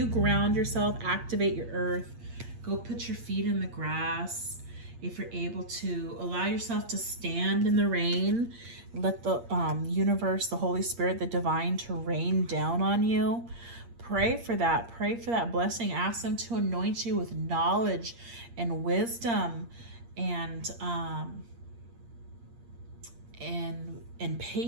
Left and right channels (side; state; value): left; late; 8.6 ms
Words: ground yourself, activate your earth, go put your feet in the grass. If you're able to, allow yourself to stand in the rain, let the universe, the Holy Spirit, the divine to rain down on you. Pray for that. Pray for that blessing. Ask them to anoint you with knowledge and wisdom and